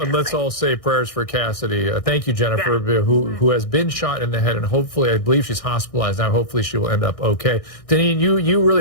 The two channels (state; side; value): late; right; 1.6 ms